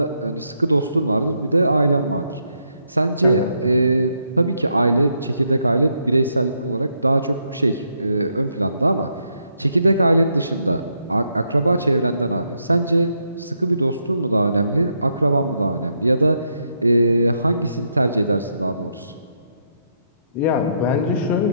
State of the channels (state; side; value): inverted; both; correlation -0.77